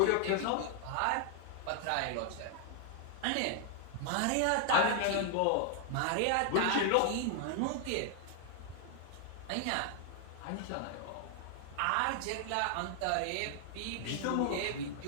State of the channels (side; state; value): both; different; correlation 0.00